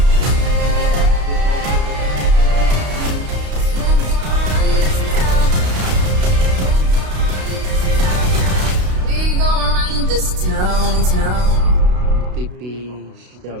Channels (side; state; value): left; late; 32 ms